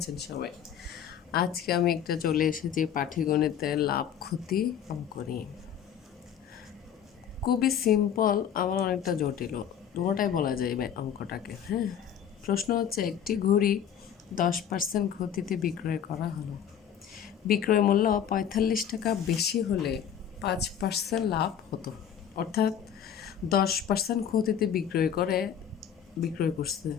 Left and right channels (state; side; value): quieter; right; 8.9 dB